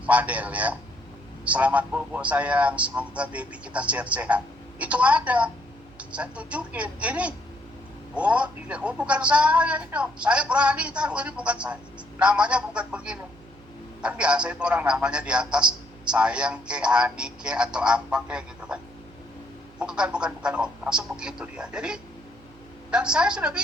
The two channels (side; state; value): right; noise; hum, 25 dB below the sound